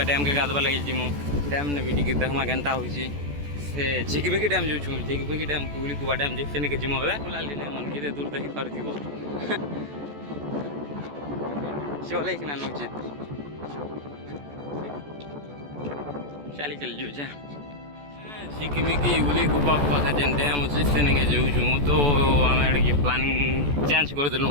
डैम के गाधवा लगे जिमु डैम ने भी देखा केन्ता हो चिकबिकी डैम जो चिकबिकी डैम कुबा डैम से नहीं जिमु बुलाली मन कि दूर देखी पार चले कि नौचे चली चल जो चिकमिकी उली गुबा पाखे जेन डैम अच्छे से नहीं जाऊँ तो आम प्लानिंग चेंज करदेलु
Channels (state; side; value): late; left; 14 ms